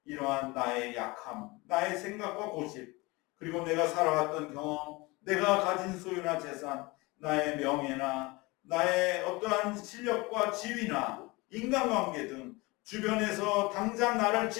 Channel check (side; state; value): right; quieter; 24.0 dB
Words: 이러한 나의 약함, 나의 생각과 고집, 그리고 내가 살아왔던 경험, 내가 가진 소유나 재산, 나의 명예나 나의 어떠한 실력과 지위나 인간관계 등 주변에서 당장 나를